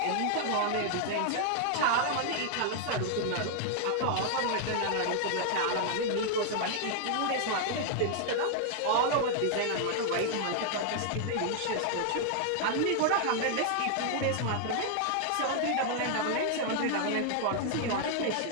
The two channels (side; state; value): both; different; correlation 0.00